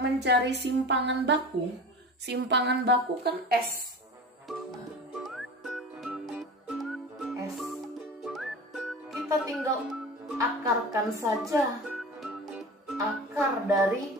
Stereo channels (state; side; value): normal; both; correlation 0.33